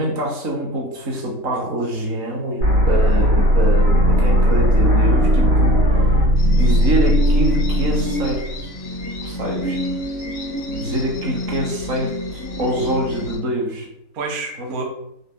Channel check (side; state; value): left; late; 3.8 ms